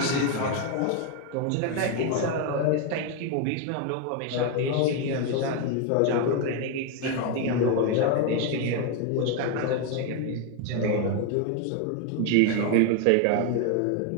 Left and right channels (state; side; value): different; both; correlation 0.01